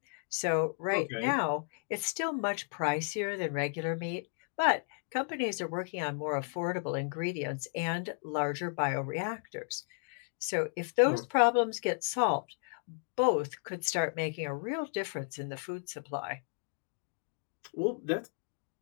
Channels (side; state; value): right; silent; digital silence